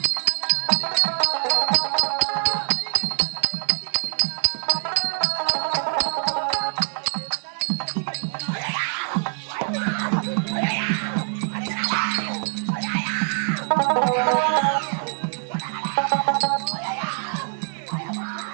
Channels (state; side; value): silent; left; digital silence